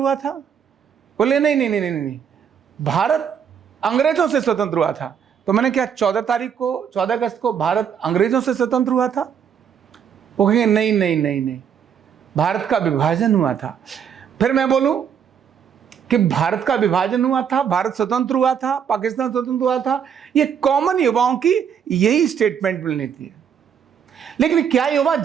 था? बोले नहीं नहीं नहीं नहीं नहीं, भारत अंग्रेजों से स्वतंत्र हुआ था। तो मैंने क्या 14 अगस्त को भारत अंग्रेजों से स्वतंत्र हुआ था? वो कहेंगे नहीं नहीं नहीं नहीं, भारत का विभाजन हुआ था। फिर मैं बोलूं कि भारत का विभाजन हुआ था, भारत स्वतंत्र हुआ था, पाकिस्तान स्वतंत्र हुआ था, ये कॉमन युवाओं की यही स्टेटमेंट मिलनी थी। लेकिन क्या युवा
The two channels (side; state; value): left; quieter; 7.9 dB